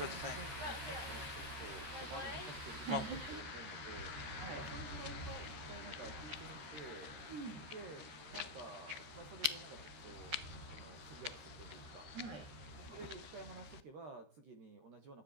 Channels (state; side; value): late; left; 13 ms